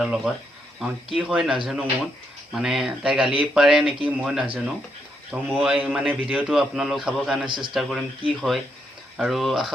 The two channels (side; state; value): both; normal; correlation 0.78